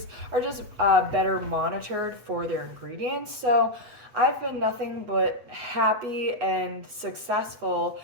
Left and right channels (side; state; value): left; late; 8.2 ms